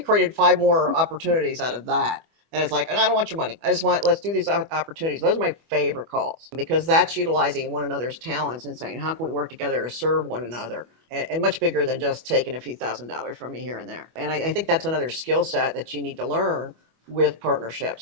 5 more opportunities out of that. And it's like, and I don't want your money. I just let's do these opportunities. Those are my favorite calls because that's utilizing one another's talents and saying, how can we work together to serve one another? And much bigger than just taking a few $1,000s from me here and there. And I think that's another skill set that you need to learn with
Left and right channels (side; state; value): left; late; 25 ms